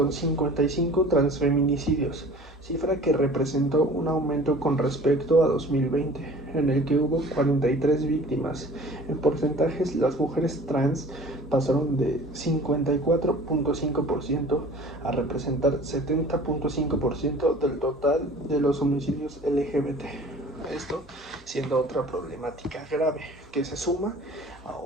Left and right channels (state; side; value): normal; both; correlation 0.45